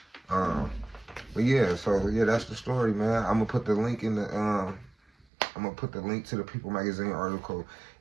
But yeah, that's the story, man. I'm gonna put the link in the to the People Magazine article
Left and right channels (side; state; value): left; drops out; at 5.2 s